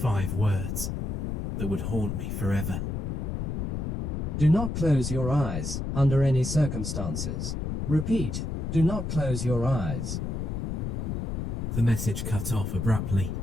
words that would haunt me forever. Do not close your eyes under any circumstances. Repeat, do not close your eyes. The message cut off abruptly.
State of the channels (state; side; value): noise; left; rumble, 2 dB below the sound